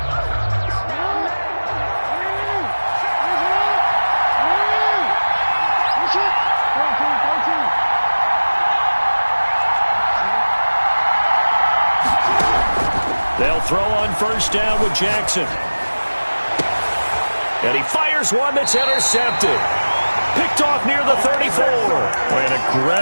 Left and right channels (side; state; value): both; inverted; correlation -1.00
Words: They'll throw on first down with Jackson. And he fires one that's intercepted. Picked off near the 34. An